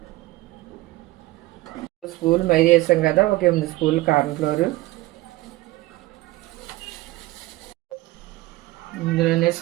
స్పూన్లు మైదా వేసాం కదా, ఒక 8 స్పూన్లు కార్న్ఫ్లోర్, ఇందులోనే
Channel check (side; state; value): left; quieter; 19.1 dB